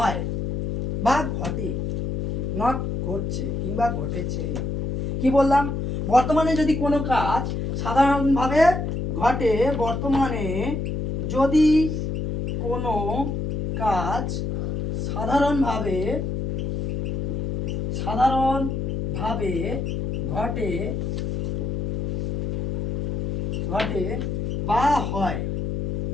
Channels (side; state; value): left; noise; hum, 2 dB below the sound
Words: বা ঘটে, নট ঘটছে কিংবা ঘটেছে। কি বললাম? বর্তমানে যদি কোনো কাজ সাধারণভাবে ঘটে, বর্তমানে যদি কোনো কাজ সাধারণভাবে ঘটে বা হয়,